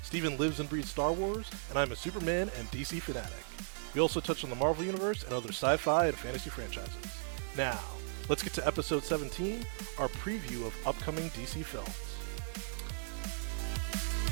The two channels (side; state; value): left; silent; digital silence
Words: Steven lives and breathes Star Wars, and I'm a Superman and DC fanatic. We also touch on the Marvel Universe and other sci-fi and fantasy franchises. Now, let's get to episode 17, our preview of upcoming DC films.